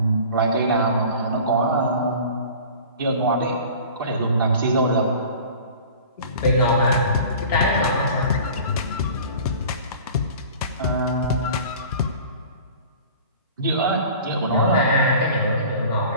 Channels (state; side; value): inverted; both; correlation -0.42